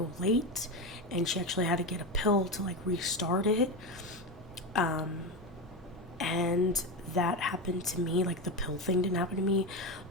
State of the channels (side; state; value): both; normal; correlation 0.17